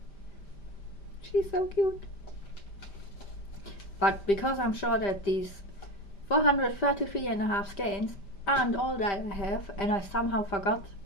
She's so cute. But because I'm sure that these 433.5 skeins aren't all that I have, and I somehow forgot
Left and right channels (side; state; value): right; late; 5.0 ms